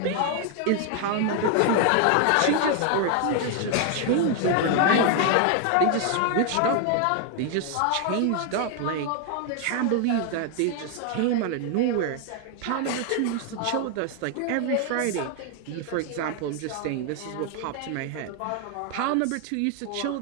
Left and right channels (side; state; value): both; different; correlation 0.00